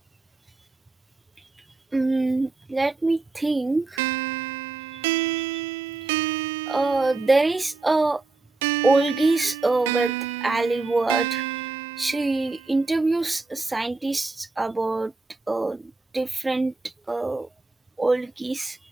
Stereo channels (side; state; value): left; quieter; 3.5 dB